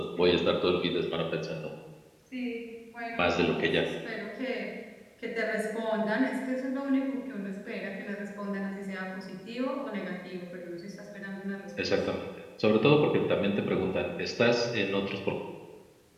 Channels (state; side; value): identical; both; correlation 1.00